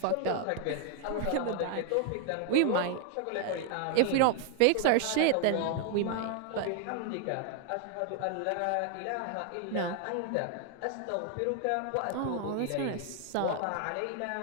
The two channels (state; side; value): different; both; correlation 0.00